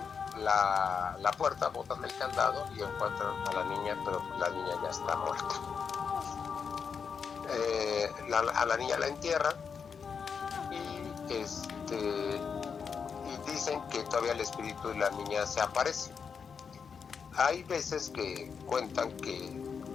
la puerta, botan el candado y encuentran a la niña, pero la niña ya está muerta. A la niña la entierran y dicen que todavía el espíritu de la niña se aparece. Hay veces que cuentan que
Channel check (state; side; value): quieter; right; 6.2 dB